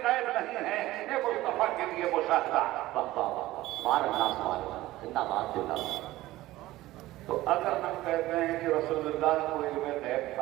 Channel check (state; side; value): quieter; left; 16.8 dB